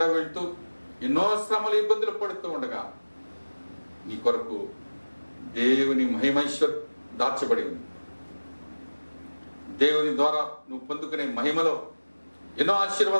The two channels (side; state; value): both; inverted; correlation -1.00